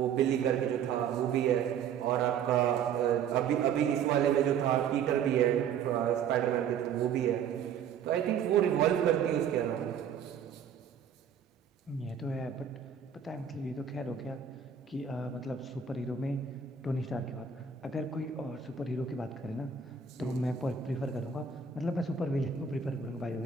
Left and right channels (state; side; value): quieter; left; 7.3 dB